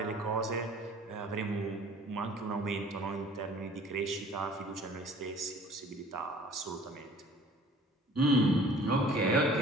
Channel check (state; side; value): normal; both; correlation 0.50